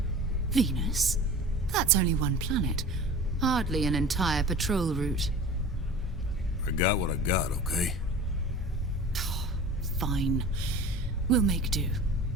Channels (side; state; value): both; normal; correlation 0.39